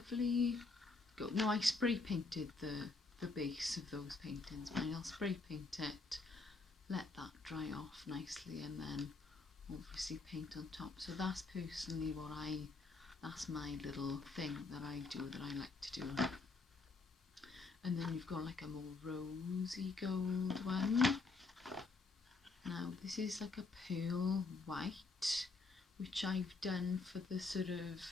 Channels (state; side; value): quieter; right; 3.8 dB